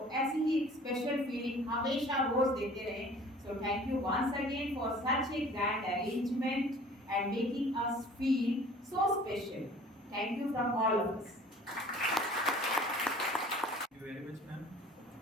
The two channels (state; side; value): normal; both; correlation 0.48